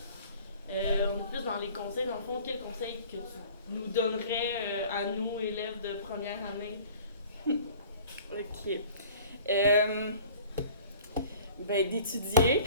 On est plus dans les conseils. Dans le fond, quel conseil que tu nous donnerais à nous, élèves de première année? Ok. Ben, d'étudier.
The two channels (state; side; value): inverted; both; correlation -0.48